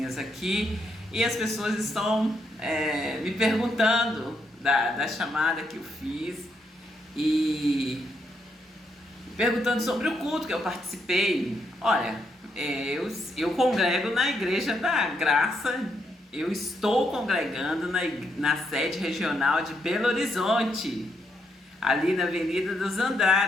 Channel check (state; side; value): normal; both; correlation 0.78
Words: aqui. E as pessoas estão me perguntando da chamada que eu fiz e perguntando sobre o culto que eu participei. Olha, eu congrego na Igreja da Graça, eu estou congregando na sede regional de Belo Horizonte, ali na Avenida dos